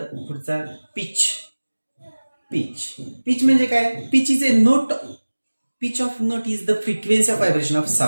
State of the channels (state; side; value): inverted; both; correlation -1.00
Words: पुढचा पिच. पिच म्हणजे काय? Pitch is a note. Pitch of note is the frequency of vibration of